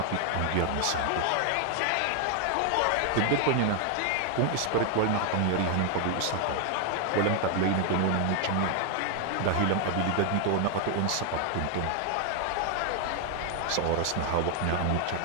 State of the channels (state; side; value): different; both; correlation 0.00